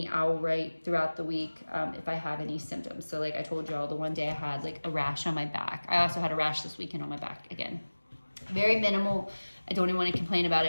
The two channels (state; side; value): inverted; both; correlation -1.00